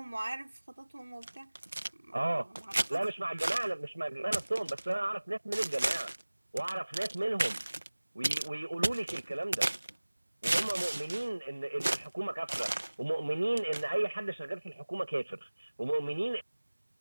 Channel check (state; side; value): inverted; both; correlation -1.00